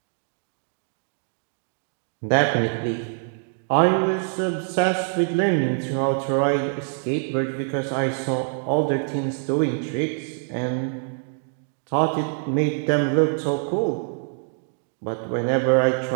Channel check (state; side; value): silent; left; 62 dB below the other